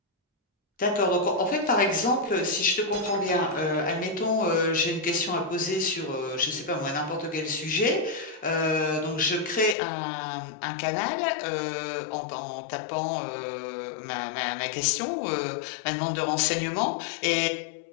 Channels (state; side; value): drops out; right; at 9.8 s